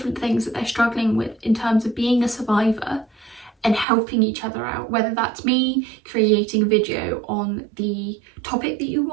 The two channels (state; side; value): drops out; left; at 3.9 s